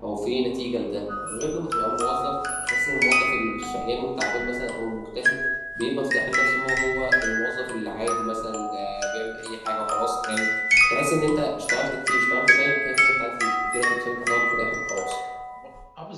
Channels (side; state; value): both; identical; correlation 1.00